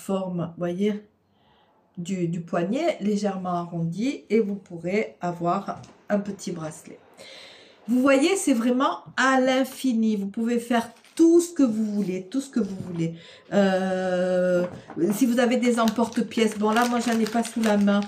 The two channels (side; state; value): both; identical; correlation 1.00